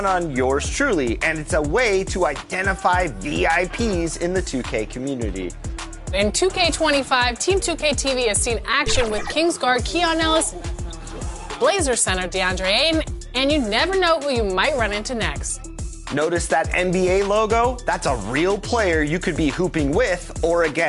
on yours truly, and it's a way to identify VIPs in the 2K community. In 2K25, Team 2K TV has seen action with Kings guard Keon Ellis, Blazer center DeAndre Ayton, and you never know who you might run into next. Notice that NBA logo? That's a real player you could be hooping with or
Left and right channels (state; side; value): identical; both; correlation 1.00